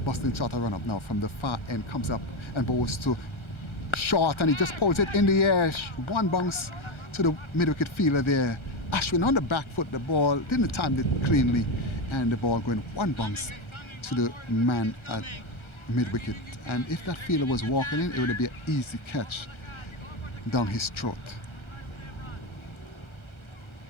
busting shot a run up now from the far end, comes up and bowls to short, and he just pulls it in the air. One bounce to the mid-wicket fielder there. Ashwin on the back foot, the ball didn't time it cleanly, and the ball going one bounce to the man at mid-wicket. And if that fielder was walking in, it would be an easy catch down his throat.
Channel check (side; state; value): right; late; 1.4 ms